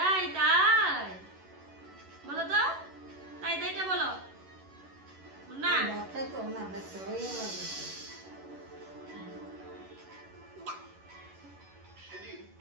তাই বলো তো তাই তাইটা বলো না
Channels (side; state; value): left; late; 11 ms